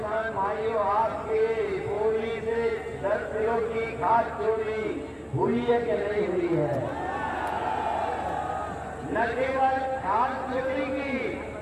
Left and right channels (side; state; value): both; identical; correlation 1.00